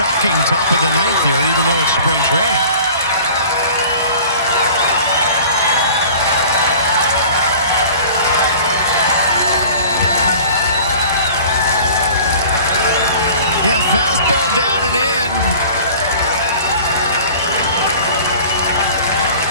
top of the ninth here, even though it's spring training. Yeah, fastball down and in.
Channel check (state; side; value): inverted; both; correlation -0.44